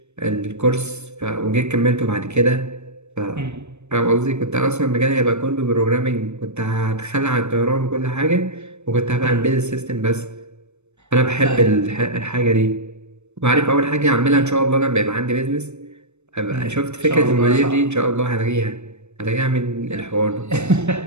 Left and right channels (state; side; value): late; left; 0.82 ms